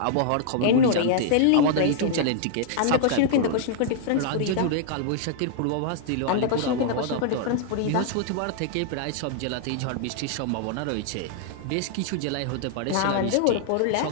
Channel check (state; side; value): different; both; correlation -0.01